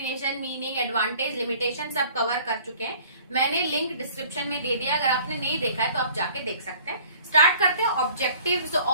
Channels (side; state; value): both; inverted; correlation -0.51